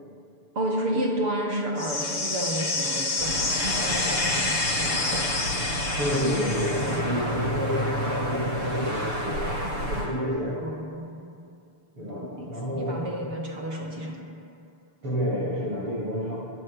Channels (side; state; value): left; late; 6.9 ms